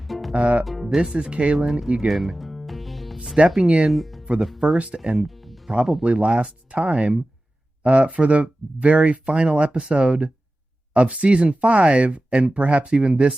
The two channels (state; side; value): normal; both; correlation 0.95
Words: This is Kalen Egan stepping in for the first and probably last time for the very final episode of season 5 and perhaps even